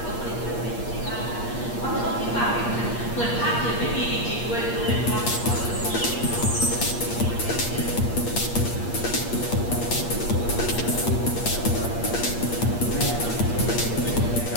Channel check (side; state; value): right; late; 8.5 ms